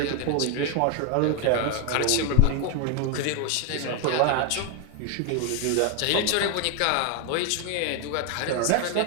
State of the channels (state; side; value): different; both; correlation 0.01